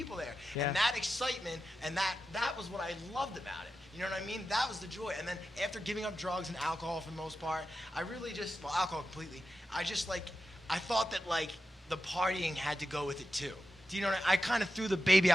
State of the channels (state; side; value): normal; both; correlation 0.91